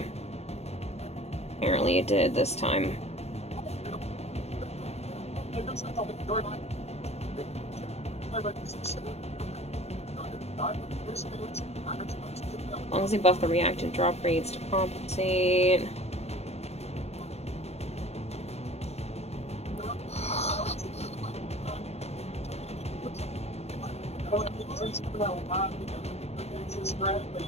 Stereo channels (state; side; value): late; right; 0.31 ms